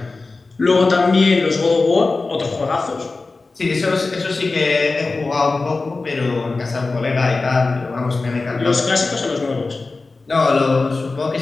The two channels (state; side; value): quieter; right; 3.7 dB